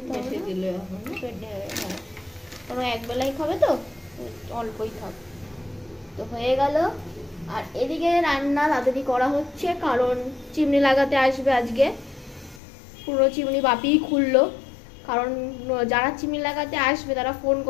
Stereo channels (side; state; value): right; drops out; at 12.6 s